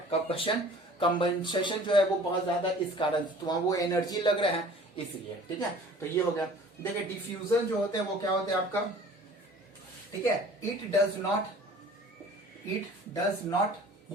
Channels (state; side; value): normal; both; correlation 0.48